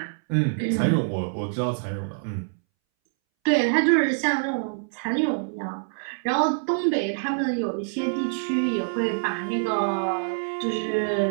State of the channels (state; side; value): silent; left; 61 dB below the other